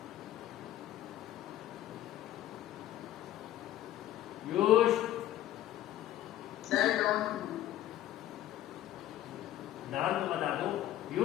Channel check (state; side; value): quieter; right; 13.2 dB